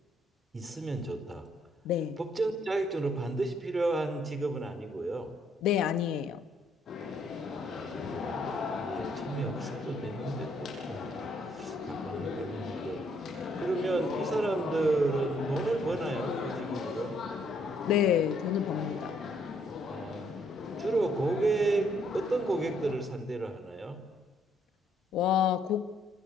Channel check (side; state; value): both; normal; correlation 0.69